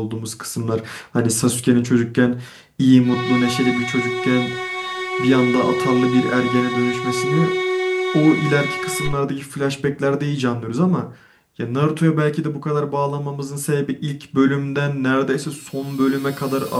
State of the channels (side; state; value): both; identical; correlation 1.00